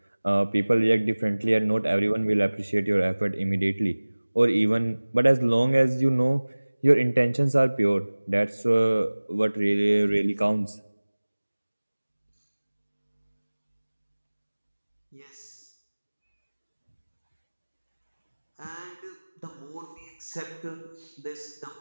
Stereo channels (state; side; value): inverted; both; correlation -1.00